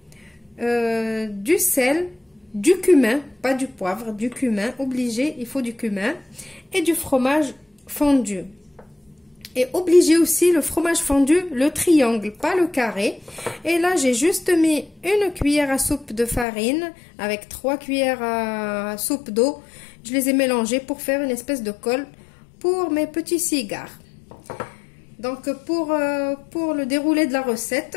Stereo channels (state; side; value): drops out; right; at 16.4 s